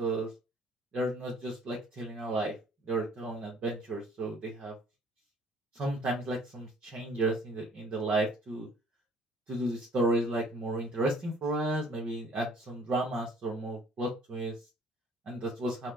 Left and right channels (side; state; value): both; normal; correlation 0.56